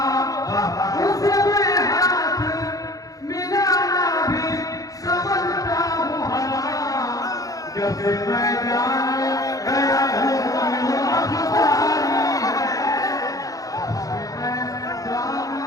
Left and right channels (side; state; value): right; late; 0.17 ms